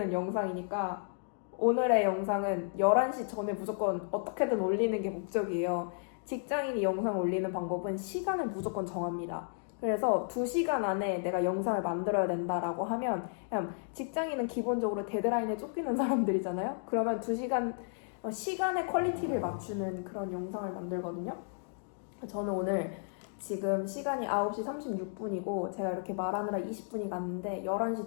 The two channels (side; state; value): right; silent; digital silence